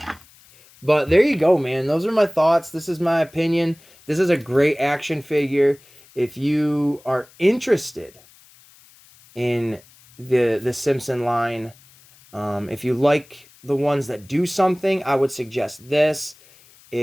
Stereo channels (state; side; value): noise; left; hiss, 27 dB below the sound